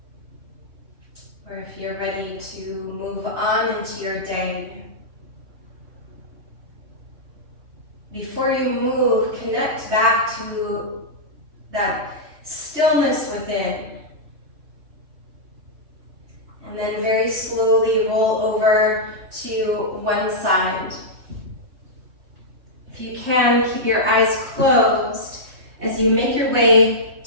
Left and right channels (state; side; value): late; left; 3.3 ms